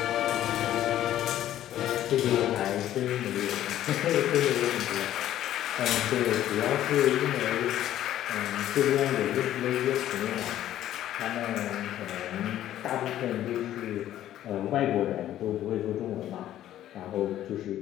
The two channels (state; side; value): quieter; right; 12.5 dB